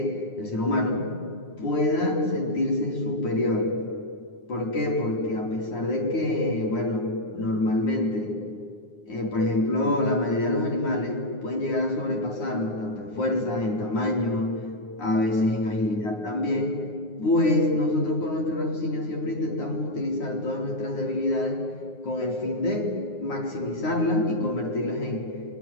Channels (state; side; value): late; right; 9.6 ms